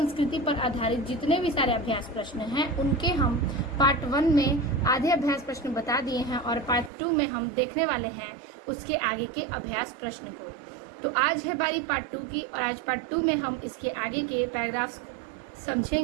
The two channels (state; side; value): drops out; left; at 6.9 s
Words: पर आधारित जितने भी सारे अभ्यास प्रश्न हैं उनके हम पार्ट 1 में आधे अभ्यास प्रश्न बता दिए हैं और पार्ट 2 में हम देखने वाले हैं उसके आगे के अभ्यास प्रश्न को। तो आज है बारी पार्ट 2 की और आज पार्ट 2 में हम इसके आगे के पैराग्राफ्स